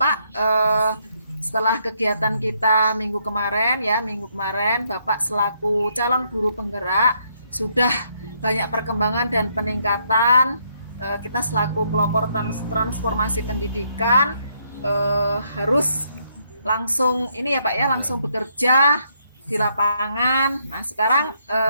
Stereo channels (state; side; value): inverted; both; correlation -0.73